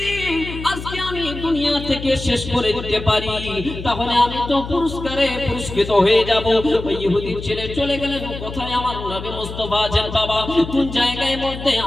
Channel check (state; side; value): noise; left; hum, 10 dB below the sound